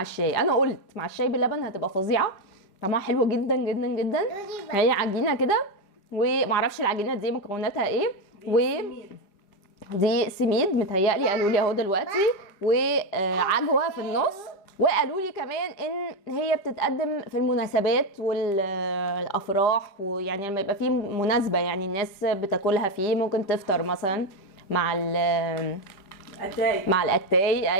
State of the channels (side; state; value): right; late; 5.0 ms